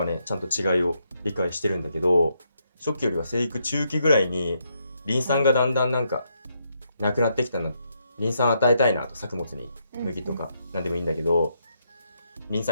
ねちゃんと違いを理解してるんだけど、初期よりは生育中期ぐらいにリン酸がだんだんなんかなくなってきたの、リン酸与えたいなと、作物に麦とか何でもいいんだけど、リン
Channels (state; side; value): inverted; both; correlation -0.78